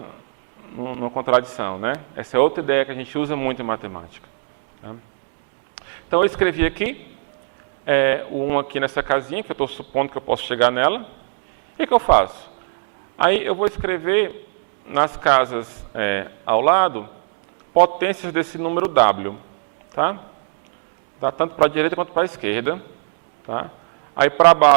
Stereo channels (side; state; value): left; silent; digital silence